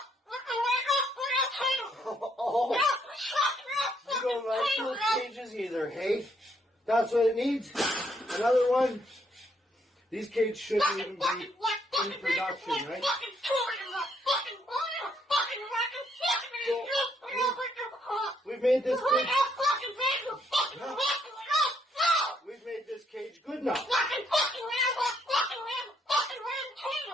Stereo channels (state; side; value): normal; both; correlation 0.72